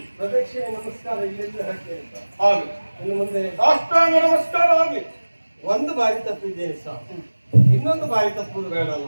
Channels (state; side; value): inverted; both; correlation -1.00